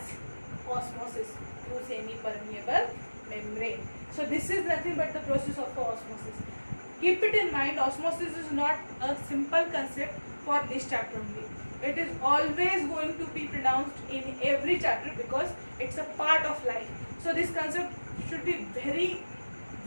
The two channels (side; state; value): both; inverted; correlation -1.00